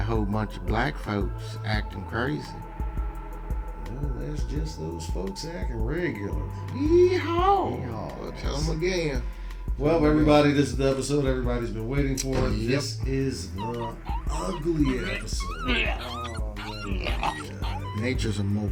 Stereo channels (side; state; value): both; identical; correlation 1.00